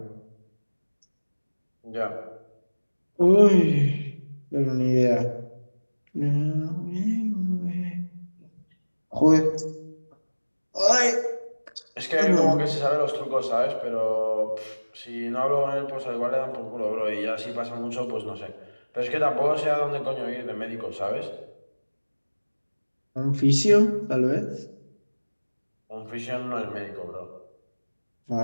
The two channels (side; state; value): both; inverted; correlation -1.00